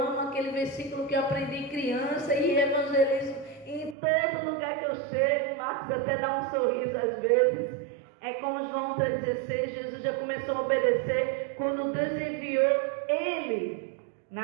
aquele versículo que eu aprendi criança e evangelizo em todo lugar que eu chego. Marcos até dá um sorriso às vezes. É como João 3,16, Jesus já começou a obedecer quando Deus enviou ele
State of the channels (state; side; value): drops out; left; at 4.0 s